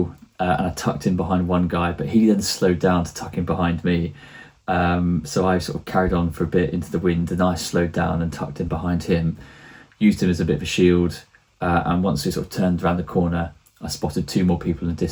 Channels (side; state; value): both; identical; correlation 1.00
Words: And I tucked in behind one guy, but he then slowed down to tuck in behind me. So I sort of carried on for a bit into the wind, and I slowed down and tucked in behind him, used him as a bit of a shield. And once we sort of turned around the corner, I spotted two more people in the